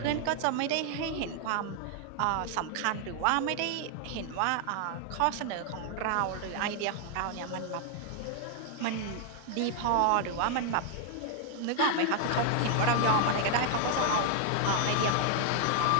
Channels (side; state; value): both; different; correlation 0.00